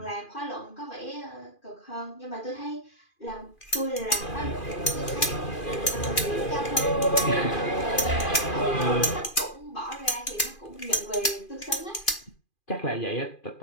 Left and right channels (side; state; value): right; late; 2.4 ms